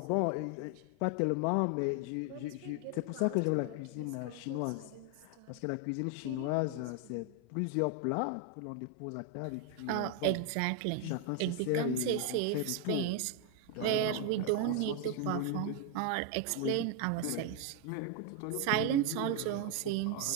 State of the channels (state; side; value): different; both; correlation 0.01